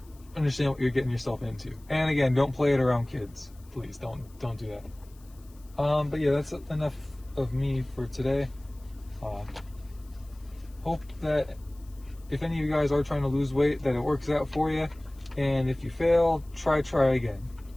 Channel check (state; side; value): noise; left; hiss, 28 dB below the sound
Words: understand what you're getting yourself into. And again, don't play it around kids. Please don't do that. But yeah, that's enough of me for today. Hope that if any of you guys are trying to lose weight, that it works out for you. And if you fail, try again.